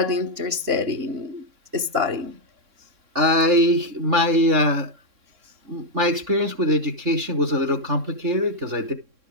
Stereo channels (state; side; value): late; left; 3.6 ms